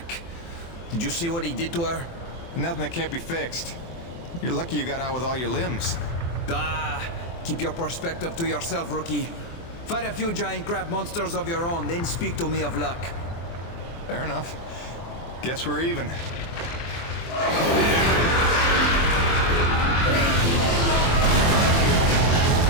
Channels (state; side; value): late; right; 24 ms